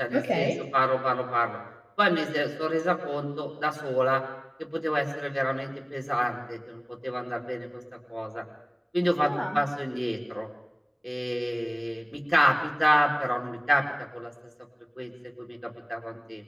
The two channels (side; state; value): both; identical; correlation 1.00